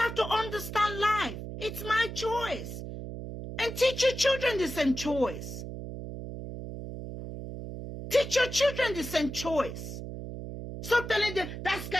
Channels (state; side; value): noise; right; hum, 8 dB below the sound